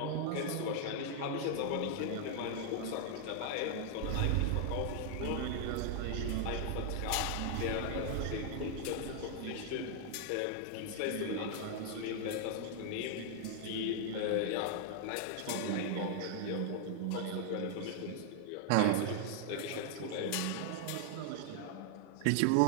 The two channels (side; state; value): both; different; correlation -0.01